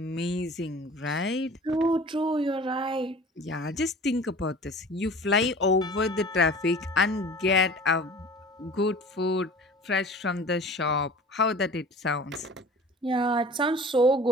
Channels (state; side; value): normal; both; correlation 0.42